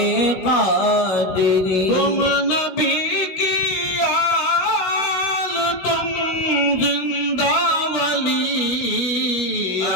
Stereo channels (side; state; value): right; late; 16 ms